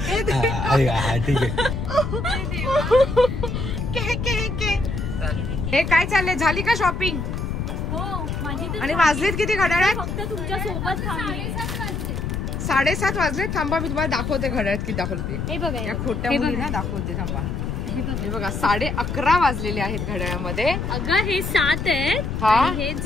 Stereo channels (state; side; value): noise; left; rumble, 3 dB below the sound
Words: हे काय चाललंय? झाली का शॉपिंग? हो माझी. आणि वाजलेत किती घड्याळात? फक्त तुमच्या सोबत थांबले. 7:30 वाजले. थांबा मी तुम्हाला दाखवते घड्याळात किती दाखवलं ते. हे बघा या खोट्या मुलींना दाखवते. थांबा, हे बघा 11:30 वाजलेले आहेत घड्याळामध्ये. अगं हे 7 आहेत आणि हे